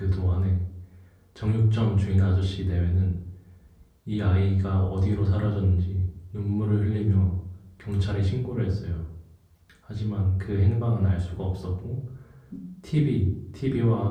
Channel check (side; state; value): both; identical; correlation 1.00